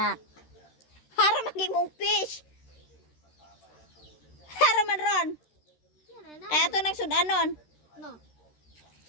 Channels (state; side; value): late; right; 13 ms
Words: Hara magimong fish. Hara man ron. Kaya to nang sudanon. No.